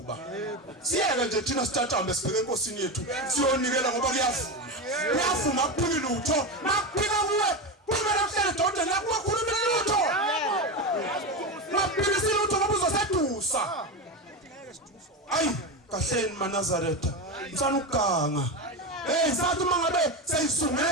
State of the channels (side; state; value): both; normal; correlation 0.17